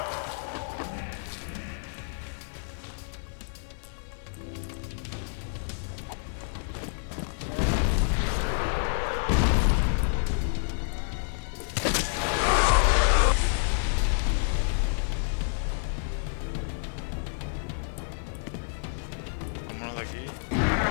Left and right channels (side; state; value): right; silent; digital silence